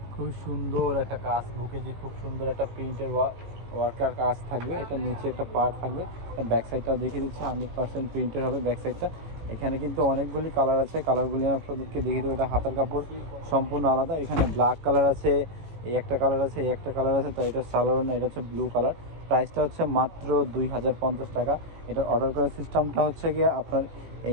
খুবই সুন্দর একটা কাজ, বুকে যে খুব সুন্দর একটা প্রিন্টের ওয়ার্কার কাজ থাকবে। এটা নিচে একটা পার্ট থাকবে, ব্যাক সাইডটা দেখিয়ে দিচ্ছি 100% প্রিন্টের হবে ব্যাক সাইডটা। এখানে কিন্তু অনেকগুলি কালার আছে, কালারগুলি আপনাদেরকে দেখিয়ে দেবো। এটা হাতার কাপড় সম্পূর্ণ আলাদা। এখানে ব্ল্যাক কালার আছে, এই একটা কালার আছে, এই একটা কালার আছে। তো এটা সালোয়ার না, এটা হচ্ছে ব্লু কালার। প্রাইসটা হচ্ছে মাত্র 2050 টাকা। এটার অর্ডার করার সিস্টেমটা হচ্ছে গিয়ে আপনার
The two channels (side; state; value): left; late; 18 ms